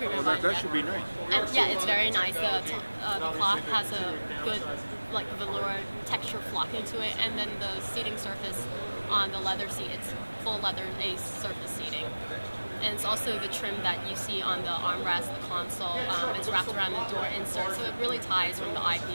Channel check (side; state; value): both; inverted; correlation -1.00